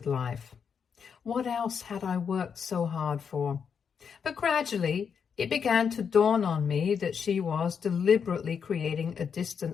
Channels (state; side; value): quieter; right; 6.8 dB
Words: life. What else had I worked so hard for? But gradually, it began to dawn on me that she was deliberately creating a